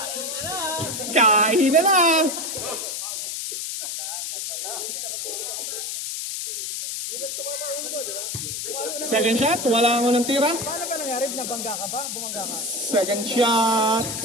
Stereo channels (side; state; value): left; noise; hiss, 4 dB below the sound